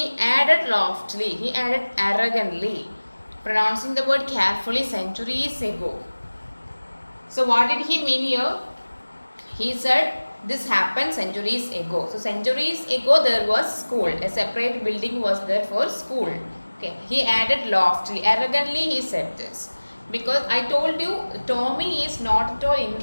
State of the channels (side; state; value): both; inverted; correlation -1.00